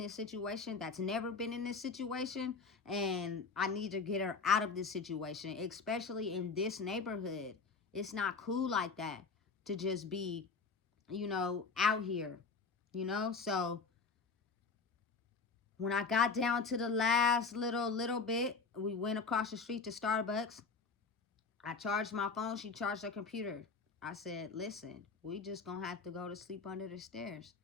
situation, that's never been in this situation, and I need to get her out of this situation, especially in this neighborhood. It's not cool like that to just be, you know, out here, you know? So when I got down to the last little bit, we went across the street to Starbucks. I charged my phone. She charged her computer. I said, listen, we just going to have to go to sleep under the stairs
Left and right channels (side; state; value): right; quieter; 4.7 dB